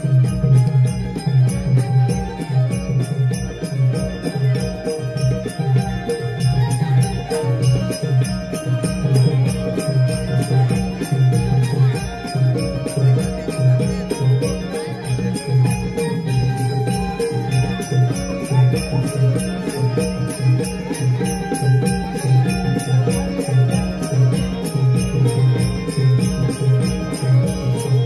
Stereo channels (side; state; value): both; identical; correlation 1.00